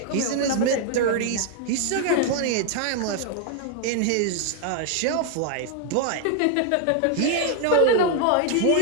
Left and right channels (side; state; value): both; different; correlation 0.01